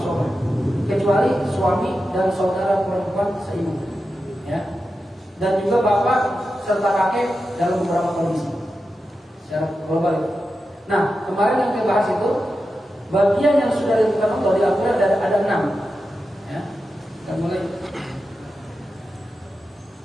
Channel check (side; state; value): both; normal; correlation 0.90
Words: Kecuali suami dan saudara perempuan seibu. Ya. Dan juga bapak serta kakek dalam beberapa kondisi. Secara global itu. Nah, kemarin yang kita bahas itu bagian yang sudah ditentukan Allah di Al-Quran ada 6. Ya, kita mulai.